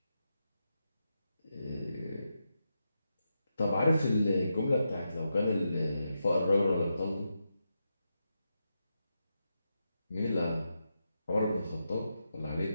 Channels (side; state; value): both; inverted; correlation -0.86